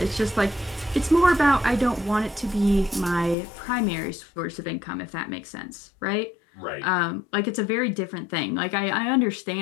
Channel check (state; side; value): drops out; right; at 3.4 s